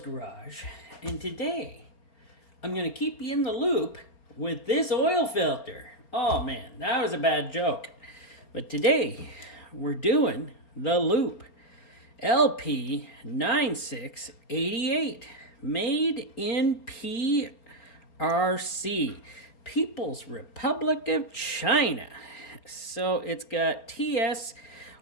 and today I'm going to keep you in the loop with this oil filter. Oh man, that was a bad joke. But today we're doing the Loop LP9688, made in PRC, People's Republic of China. So it's got TS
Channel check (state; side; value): late; right; 4.3 ms